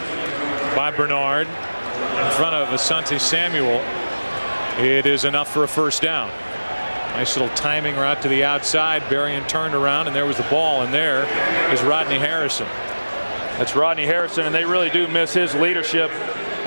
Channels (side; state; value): both; inverted; correlation -1.00